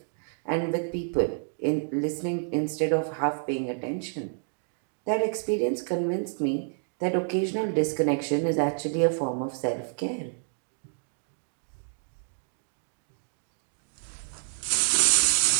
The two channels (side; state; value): left; silent; digital silence